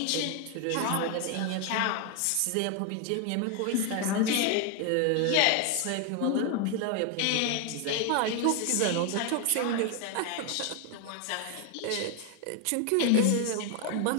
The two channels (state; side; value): different; both; correlation 0.01